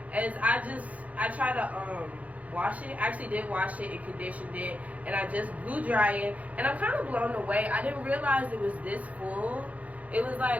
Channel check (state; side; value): late; left; 0.069 ms